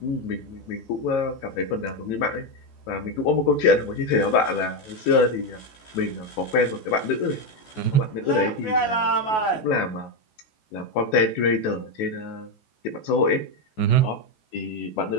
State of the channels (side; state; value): right; late; 14 ms